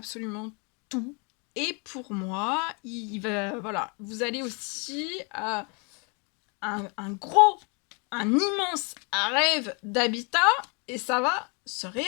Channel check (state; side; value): quieter; right; 33.5 dB